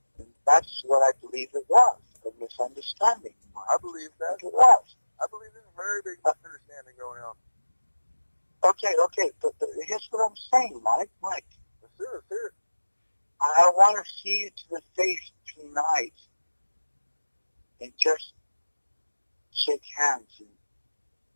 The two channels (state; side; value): inverted; both; correlation -1.00